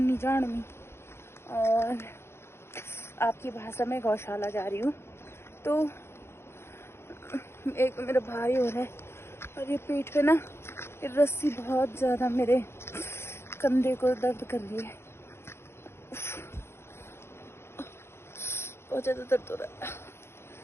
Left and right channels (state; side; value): late; right; 0.12 ms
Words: जान में, और आपकी भाषा में गौशाला जा रही हूँ। तो एक मेरा भाई हो रहा है और ये पीठ पे ना ये रस्सी बहुत ज़्यादा मेरे कंधे को दर्द कर रही है। बहुत ज़्यादा दर्द हो रहा है।